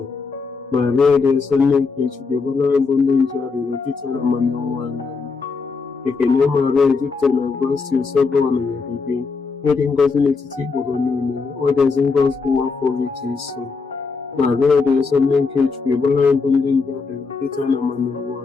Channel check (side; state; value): right; quieter; 4.7 dB